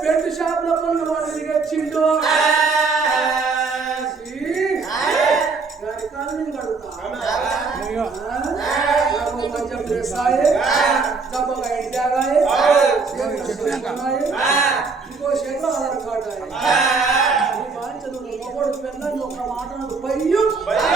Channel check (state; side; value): quieter; left; 4.5 dB